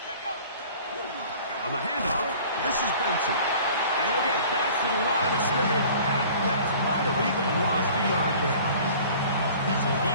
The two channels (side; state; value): both; inverted; correlation -0.47